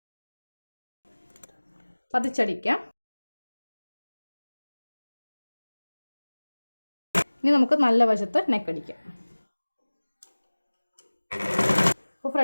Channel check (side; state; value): both; inverted; correlation -1.00